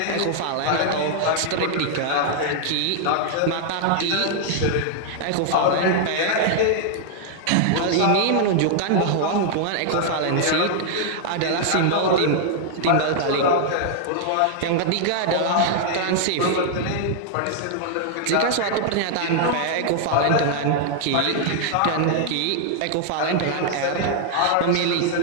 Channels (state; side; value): different; both; correlation -0.01